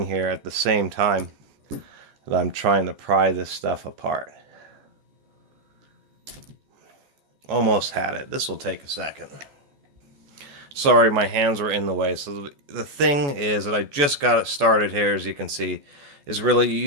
here at the same time that I'm trying to pry this stuff apart. Almost had it. This will take a second. Sorry, my hands were in the way. So the thing is that I just got it started here, as you can see. is really you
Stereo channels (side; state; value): left; late; 14 ms